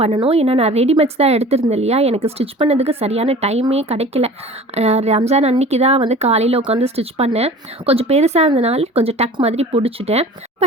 பண்ணணும். ஏன்னா நான் ரெடிமேட்ஸ் தான் எடுத்திருந்தேன் இல்லையா, எனக்கு ஸ்டிச் பண்ணதுக்கு சரியான டைமே கிடைக்கல. ரம்ஜான் அன்னைக்கு தான் வந்து காலையில் உட்காந்து ஸ்டிச் பண்ணேன். கொஞ்சம் பெருசாக இருந்தனால கொஞ்சம் டக் மாதிரி பிடிச்சிட்டேன்.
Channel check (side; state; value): both; normal; correlation 0.42